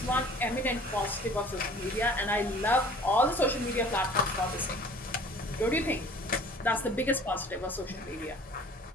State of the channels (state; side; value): normal; both; correlation 0.49